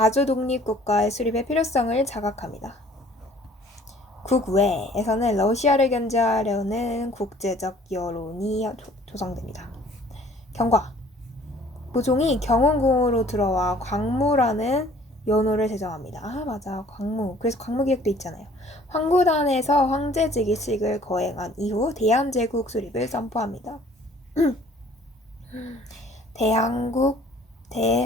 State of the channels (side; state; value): both; normal; correlation 0.54